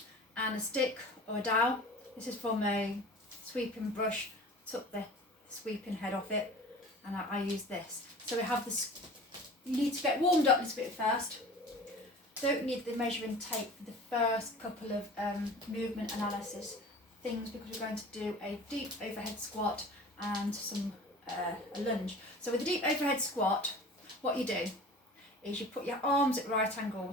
and a stick or a dowel. This is from a sweeping brush. Took the sweeping head off it and I use this. So we have this, you need to get warmed up a little bit first. Don't need the measuring tape for the first couple of movement analysis things because we're going to do a deep overhead squat and a lunge. So with the deep overhead squat, what you do is you put your arms at right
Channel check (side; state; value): both; normal; correlation 0.41